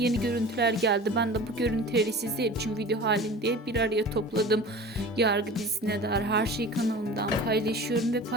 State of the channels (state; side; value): normal; both; correlation 0.38